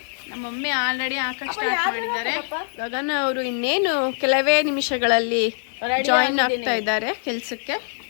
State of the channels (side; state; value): right; silent; digital silence